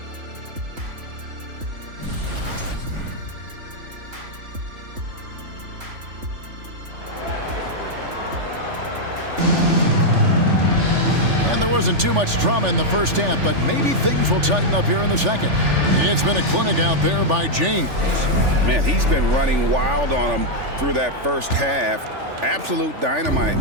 And there wasn't too much drama in the first half, but maybe things will tighten up here in the second. It's been a clinic out there by James. Man, he's been running wild on him through that first half. Absolute dynamite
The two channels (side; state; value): left; late; 3.4 ms